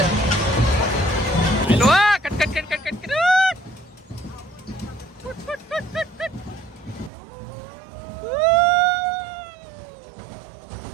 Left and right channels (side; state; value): left; drops out; at 7.1 s